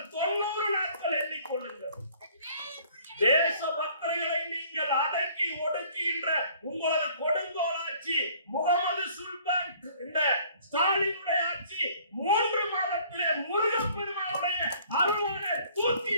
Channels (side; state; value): both; inverted; correlation -0.56